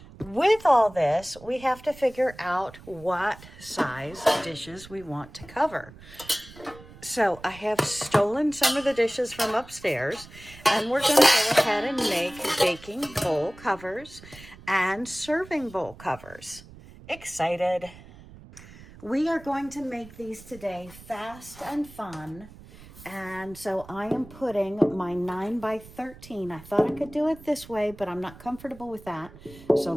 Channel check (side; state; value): right; noise; rumble, 19 dB below the sound